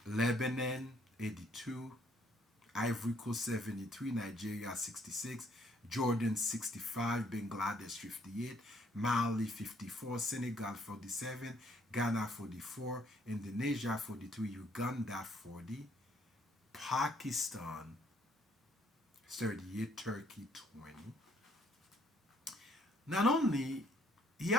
Lebanon 82, Ivory Coast 73, Nigeria 66, Jordan 65, Bangladesh 58, Mali 54, Senegal 47, Ghana 44, Indonesia 43, Uganda 40, Pakistan 38, Turkey 20. Not only he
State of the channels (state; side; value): normal; both; correlation 0.67